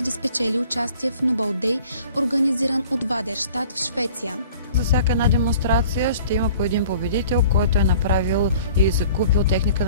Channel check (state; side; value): inverted; both; correlation -0.49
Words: да спечели участие в Nobel Day, организиран от Вадерщат в Швеция. За всяка една демонстрация ще има по един победител, който е направил и закупил техника